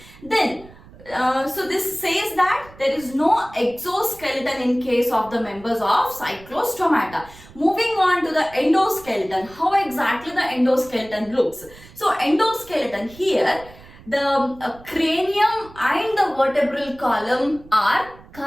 Then, so this says that there is no exoskeleton in case of the members of Cyclostomata. Moving on to the endoskeleton, how exactly the endoskeleton looks. So endoskeleton here, the cranium and the vertebral column are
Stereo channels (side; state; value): right; noise; rumble, 21 dB below the sound